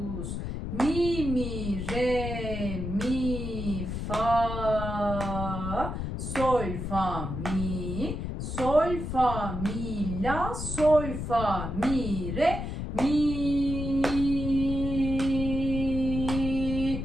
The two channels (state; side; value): noise; left; rumble, 4 dB below the sound